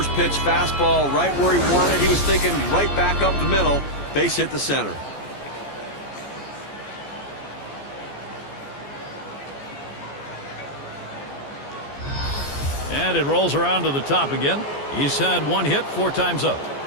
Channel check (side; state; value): right; late; 14 ms